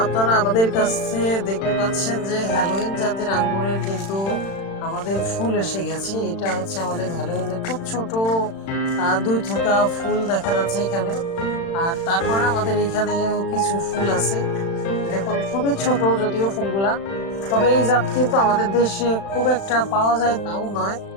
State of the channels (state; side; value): late; right; 36 ms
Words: আপনারা আমাদের কাছে দেখতে পাচ্ছেন যে হ্যালোইন জাতের আঙ্গুরের কিন্তু আমাদের ফুল এসে গেছে। এটা হচ্ছে আমাদের হ্যালোইনের খুব ছোট ২ থোকা ফুল দেখা যাচ্ছে এখানে। আর তারপরে আমাদের এখানেও কিছু ফুল আছে। দেখুন খুবই ছোট যদিও ফুলগুলা। তবে এই জাত কিন্তু আমাদের দেশে খুব একটা পাওয়া যায় তাও নয়।